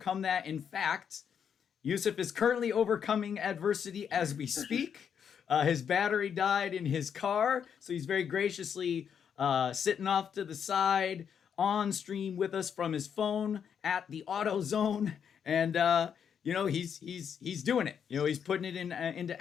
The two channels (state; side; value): quieter; right; 7.7 dB